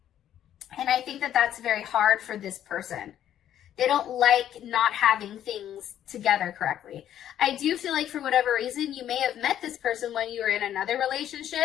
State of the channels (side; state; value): right; quieter; 10.9 dB